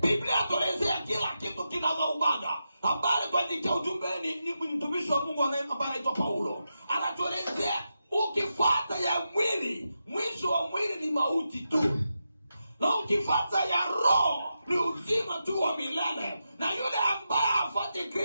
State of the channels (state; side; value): inverted; both; correlation -0.88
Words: Biblia tuelezea kila kitu kinagaubaga. Habari kwa ajili ya ujumbe ni mtumishi wa Mungu ambaye anaitwa Paulo. Anatuelezea ukifuata ya mwili, mwisho wa mwili ni mauti tu. Na ukifuata ya roho ni uzima tu wa milele. Na yule ambaye hafuati